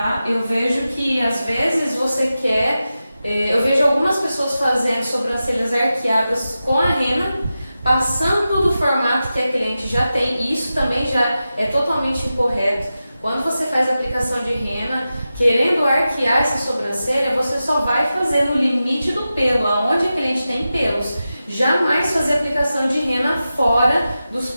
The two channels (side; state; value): both; inverted; correlation -0.92